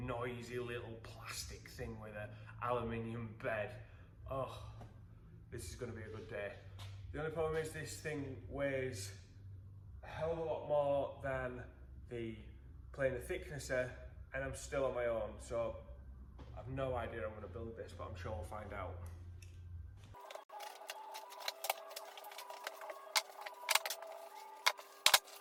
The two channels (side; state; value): both; identical; correlation 1.00